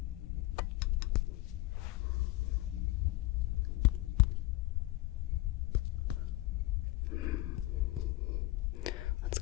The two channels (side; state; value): right; quieter; 18.5 dB